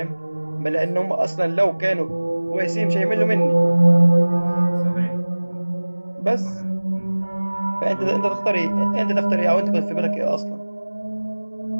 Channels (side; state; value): both; inverted; correlation -1.00